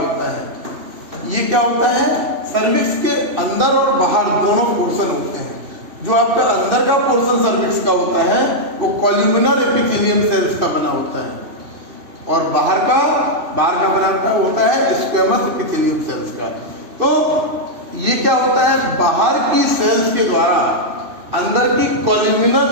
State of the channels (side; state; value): left; late; 2.7 ms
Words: होता है। ये क्या होता है? सर्विक्स के अंदर और बाहर दोनों पोर्शन होते हैं। जो आपका अंदर का पोर्शन सर्विक्स का होता है वो कॉल्यूमिनर एपिथेलियम सेल्स का बना होता है, और बाहर का बना होता है स्क्वेमस एपिथेलियम सेल्स का। तो ये क्या होता है? बाहर की सेल्स के द्वारा अंदर की